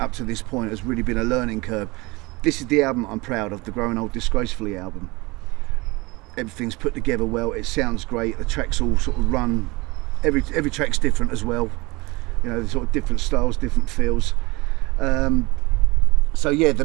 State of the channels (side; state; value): left; quieter; 23.8 dB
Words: to this point has really been a learning curve. This is the album I'm proud of, the Growing Old Disgracefully album. everything's put together well, it sounds great, the tracks all sort of run, every track's different as well, you know, sort of different styles, different feels. So yeah, the